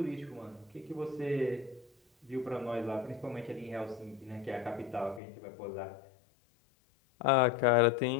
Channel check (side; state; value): right; drops out; at 5.2 s